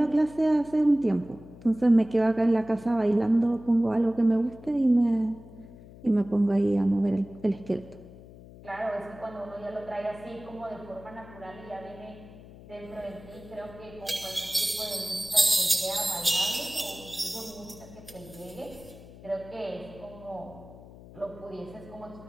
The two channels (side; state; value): left; noise; hum, 18 dB below the sound